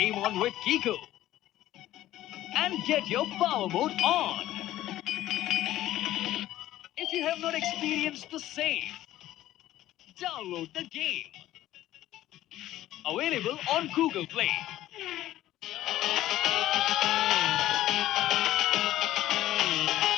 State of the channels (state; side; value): quieter; right; 14.2 dB